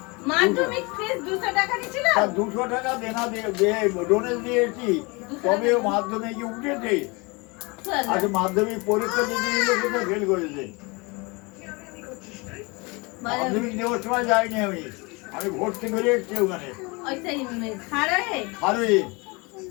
মাধ্যমিক ফিস 200 টাকা নিছিল। 200 টাকা দেনা দিয়ে ডোনেট দিয়েছি, তবে মাধ্যমিকে উঠেছে। আচ্ছা, মাধ্যমিক পরীক্ষা দিতে গেলে কোথায় ফেল করেছে? মাধ্যমিক দেওয়ার সময় যাইনি আমি, আমি ভর্তি করে এসেছি ওখানে।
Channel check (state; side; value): quieter; right; 27.4 dB